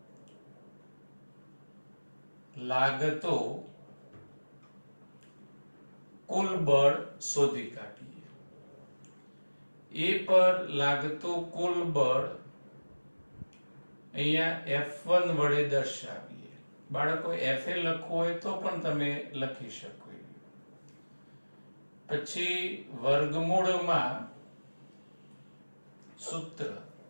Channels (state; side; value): inverted; both; correlation -1.00